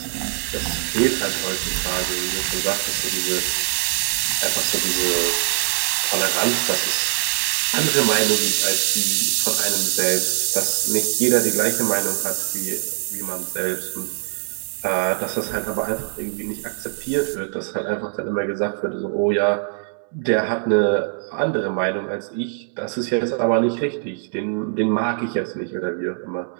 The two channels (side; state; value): left; silent; digital silence